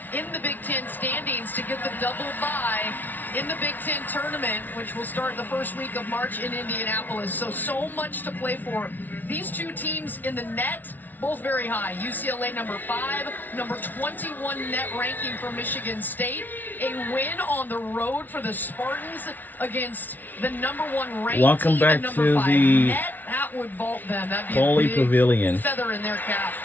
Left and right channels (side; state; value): right; late; 0.085 ms